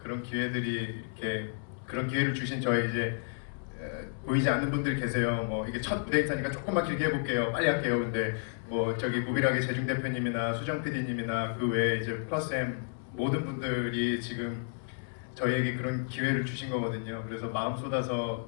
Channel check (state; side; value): silent; right; 57 dB below the other